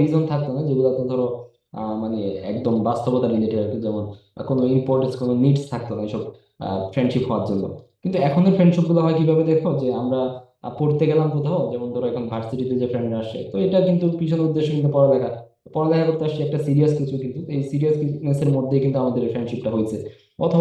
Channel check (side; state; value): both; identical; correlation 1.00